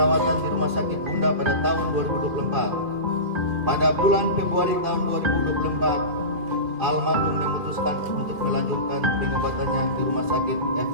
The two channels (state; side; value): late; left; 2.5 ms